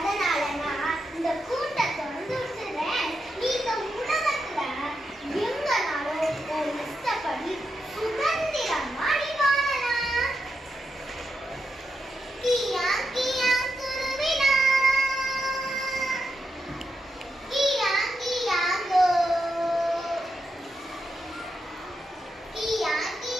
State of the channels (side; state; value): both; normal; correlation 0.85